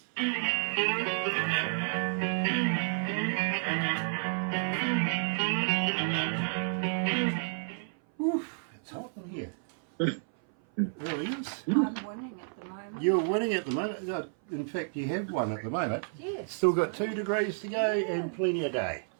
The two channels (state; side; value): silent; left; 57 dB below the other